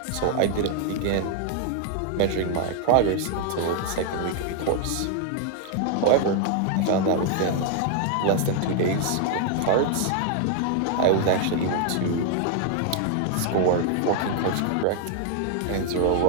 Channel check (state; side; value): different; both; correlation 0.00